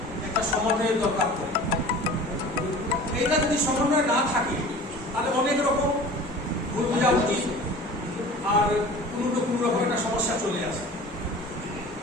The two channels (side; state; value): both; normal; correlation 0.41